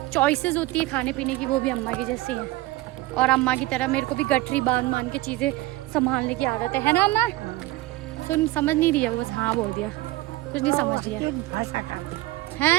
चॉइसेस होती है खाने पीने की वो भी अम्मा की जैसी हैं। और अम्मा की तरह मेरे को भी गठरी बांध के चीज़ें संभालने की आदत है ना अम्मा। तुम समझ नहीं रही है वो, बस हाँ बोल दिया, कुछ नहीं समझ रही है। भाषा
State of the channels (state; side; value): quieter; left; 18.5 dB